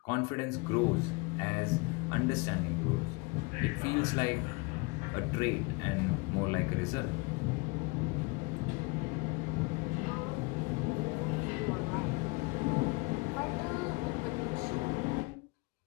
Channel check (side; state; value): right; quieter; 27.7 dB